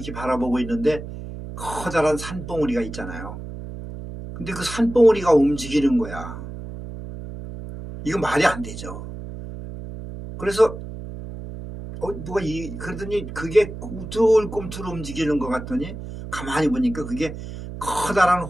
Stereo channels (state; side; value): noise; right; hum, 10 dB below the sound